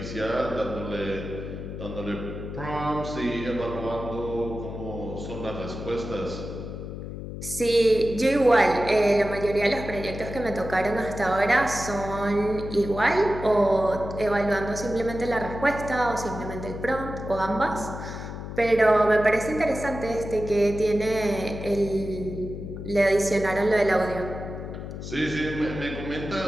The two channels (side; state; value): left; noise; hum, 8 dB below the sound